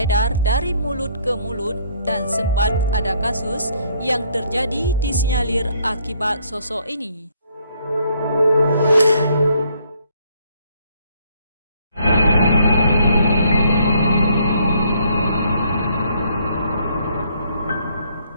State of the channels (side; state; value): both; inverted; correlation -0.66